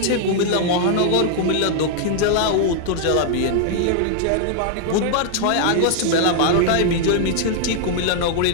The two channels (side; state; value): both; different; correlation -0.01